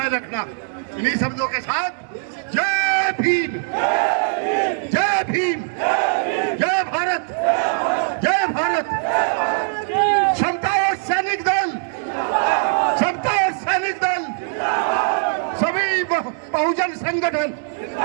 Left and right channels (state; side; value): silent; left; digital silence